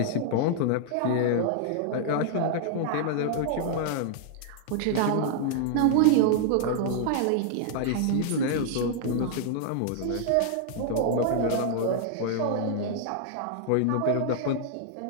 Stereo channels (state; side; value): different; both; correlation -0.01